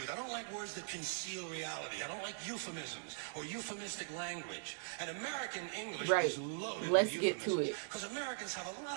I don't like words that conceal reality. I don't like euphemisms or euphemistic language. And American English is loaded Let's with get to it. Because Americans have a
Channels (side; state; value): left; silent; 50 dB below the other